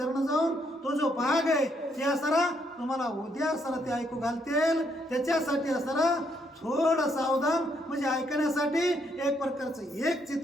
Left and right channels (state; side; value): normal; both; correlation 0.73